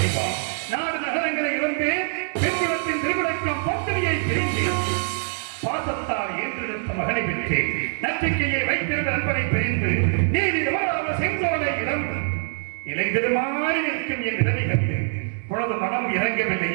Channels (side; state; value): left; silent; digital silence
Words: நாடு நகரங்களை இழந்து பெண்குலத்தின் திருவிழக்கம் பத்திரியை பிரிந்தேன். பாசத்தால் ஏற்றெடுத்த மகனை பெற்றேன். நம்பிக்கையை வைத்திருந்த நண்பனை பிரிந்து நீதி தவறாத செங்கோலை இழந்து இலைந்திருமாறி நிற்கும் என் நிலைமை கண்டு உனது மனம்